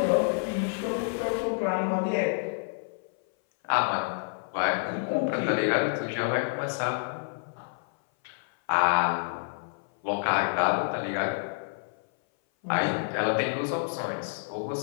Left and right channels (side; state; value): right; silent; 57 dB below the other